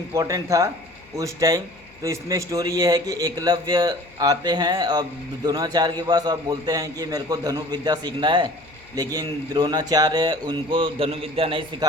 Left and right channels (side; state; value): left; noise; hum, 27 dB below the sound